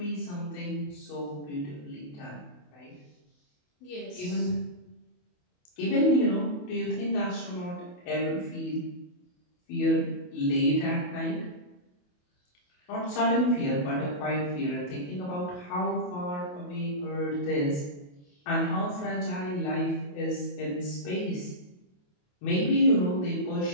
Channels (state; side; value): late; right; 28 ms